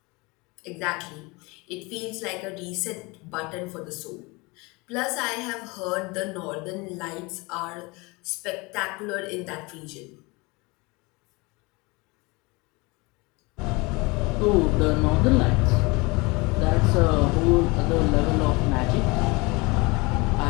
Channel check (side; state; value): right; quieter; 25.7 dB